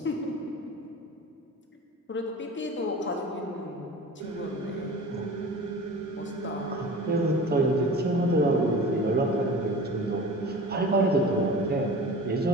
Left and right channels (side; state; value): both; normal; correlation 0.37